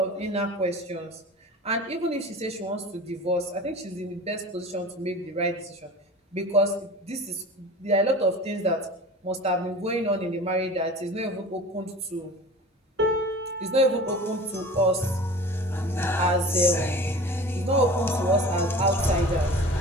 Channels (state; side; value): normal; both; correlation 0.38